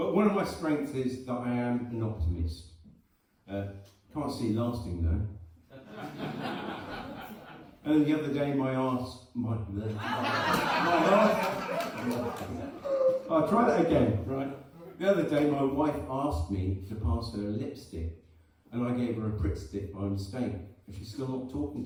one of my strengths is that I am an optimist. Can't see it lasting though. And the other day I'll try that again, right? The other day my wife asked me to pass her a lipstick, and I gave her a Pritt stick by mistake, and she's still not talking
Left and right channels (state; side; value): identical; both; correlation 1.00